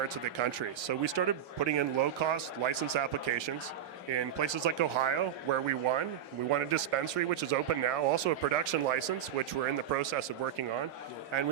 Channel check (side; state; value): left; quieter; 9.7 dB